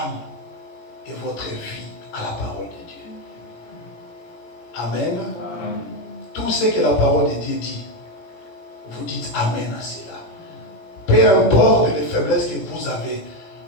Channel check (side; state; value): right; late; 18 ms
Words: et votre vie à la parole de Dieu. Amen. Tout ce que la parole de Dieu dit, vous dites Amen à cela. Peu importe les faiblesses que vous avez,